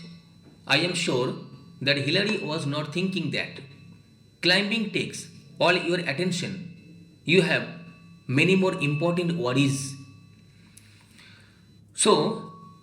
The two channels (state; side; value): identical; both; correlation 1.00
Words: I am sure that Hillary was not thinking that. Climbing takes all your attention. You have many more important worries. So,